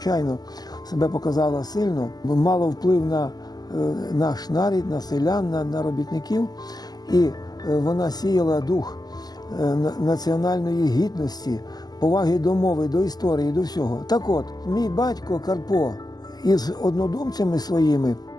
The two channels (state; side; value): late; right; 0.20 ms